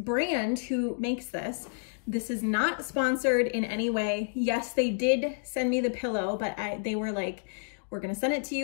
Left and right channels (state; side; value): silent; right; digital silence